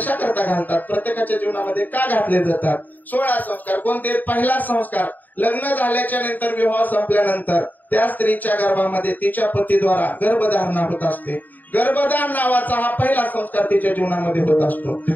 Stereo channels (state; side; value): late; right; 0.085 ms